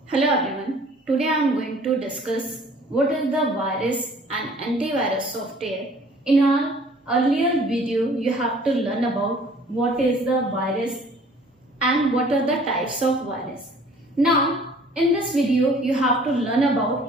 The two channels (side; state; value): both; normal; correlation 0.53